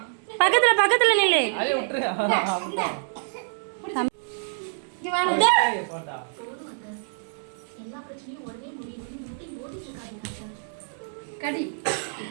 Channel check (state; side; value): silent; left; digital silence